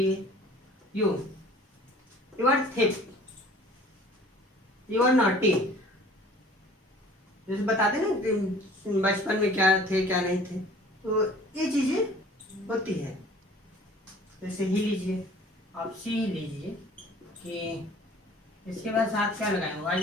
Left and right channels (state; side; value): normal; both; correlation 0.49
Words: you are thief, you are naughty. जैसे बताते ना कि बचपन में क्या थे क्या नहीं थे, तो ये चीजें होती है। जैसे ही लीजिए, आप सी ही लीजिए कि इसके बाद साथ क्या लगाएंगे, वाज